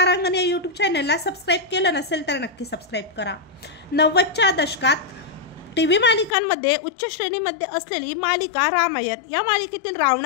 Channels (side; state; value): right; drops out; at 6.3 s